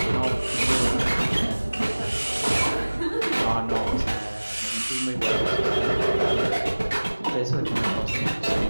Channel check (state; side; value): inverted; both; correlation -1.00